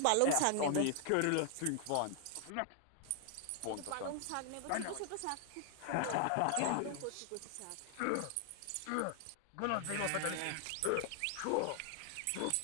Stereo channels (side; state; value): both; different; correlation 0.00